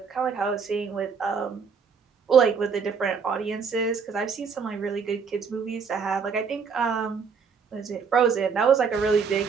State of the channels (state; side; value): quieter; left; 5.8 dB